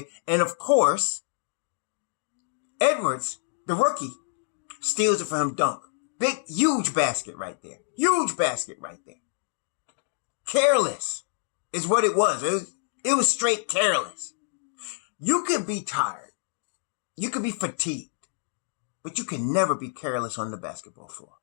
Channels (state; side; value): silent; right; digital silence